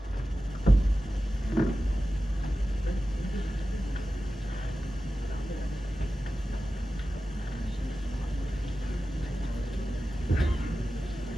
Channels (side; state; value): both; normal; correlation 0.94